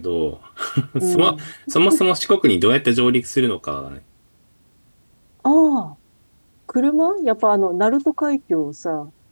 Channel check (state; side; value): inverted; both; correlation -1.00